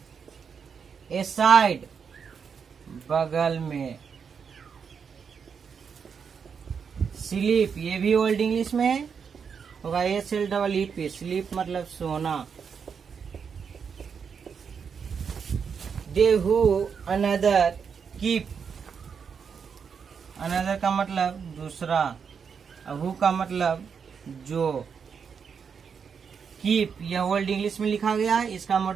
ए साइड बगल में। स्लीप, ये भी ओल्ड इंग्लिश में होगा, SLEEP। स्लीप मतलब सोना। दे हु अनदर कीप, अनदर का मतलब दूसरा, हु का मतलब जो। कीप यह ओल्ड इंग्लिश में लिखा गया है, इसका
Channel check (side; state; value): left; quieter; 6.5 dB